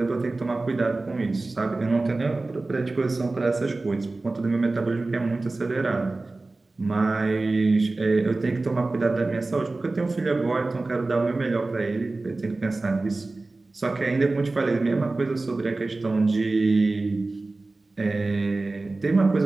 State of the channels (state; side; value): quieter; left; 3.3 dB